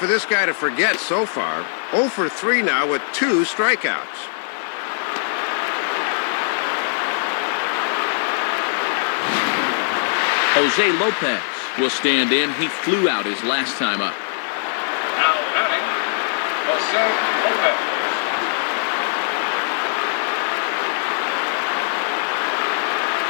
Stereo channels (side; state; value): right; silent; digital silence